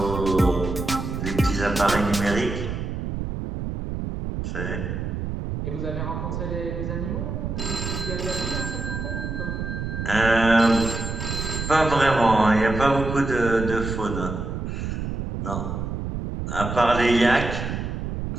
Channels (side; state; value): right; noise; rumble, 4 dB below the sound